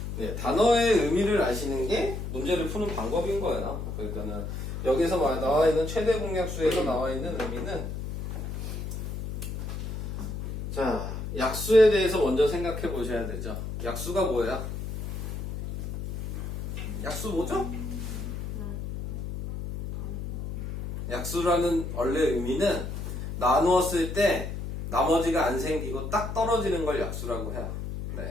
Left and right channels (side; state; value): left; noise; hum, 6 dB below the sound